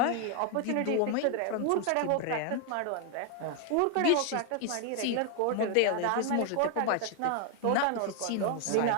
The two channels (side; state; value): both; different; correlation 0.00